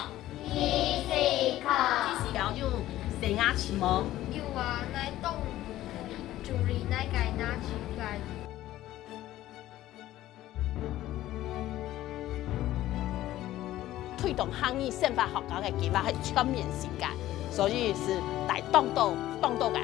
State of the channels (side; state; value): right; quieter; 14.6 dB